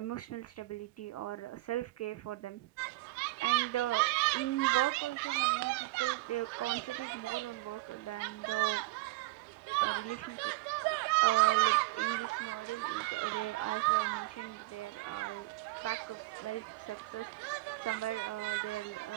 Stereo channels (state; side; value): quieter; left; 20.8 dB